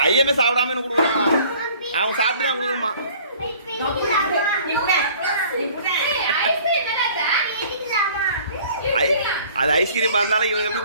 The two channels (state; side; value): inverted; both; correlation -0.52